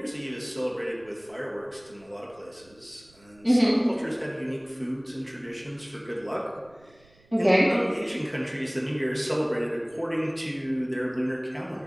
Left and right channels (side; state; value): right; noise; rumble, 29 dB below the sound